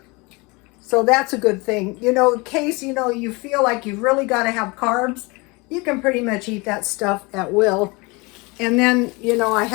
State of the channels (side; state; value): right; quieter; 26.4 dB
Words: So that's a good thing. You know, in case, you know, you feel like you've really got to have carbs, you can pretty much eat that stuff at will. And then, you know, I